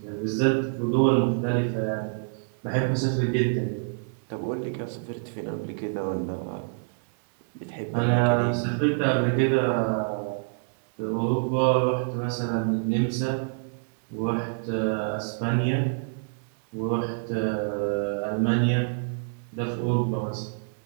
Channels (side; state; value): left; silent; digital silence